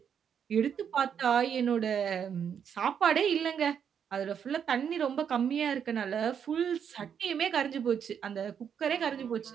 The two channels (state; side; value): quieter; left; 7.9 dB